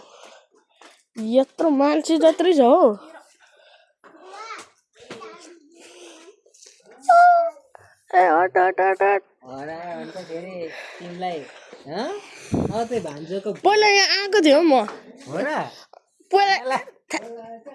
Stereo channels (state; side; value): identical; both; correlation 1.00